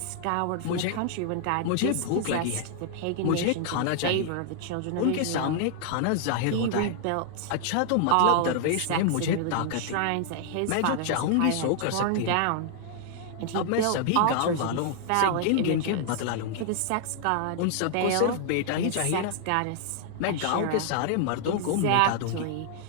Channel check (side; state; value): both; different; correlation 0.00